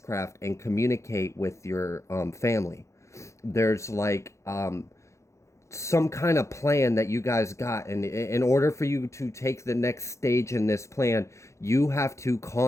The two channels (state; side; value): late; right; 0.14 ms